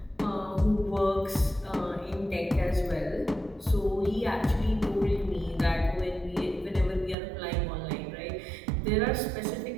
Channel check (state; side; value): drops out; left; at 7.2 s